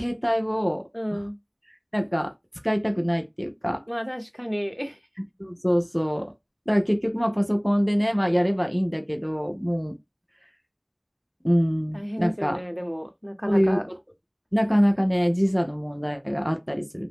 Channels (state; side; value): identical; both; correlation 1.00